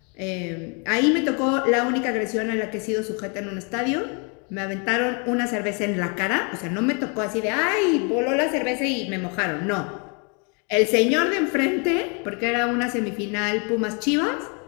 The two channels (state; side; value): quieter; right; 35.3 dB